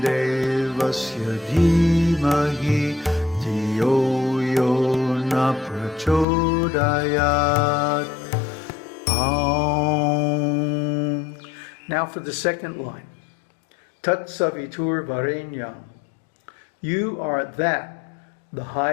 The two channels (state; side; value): drops out; right; at 6.2 s